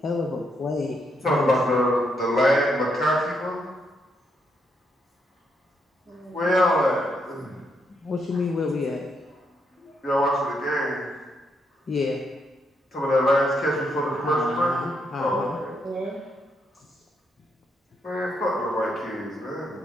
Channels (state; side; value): normal; both; correlation 0.77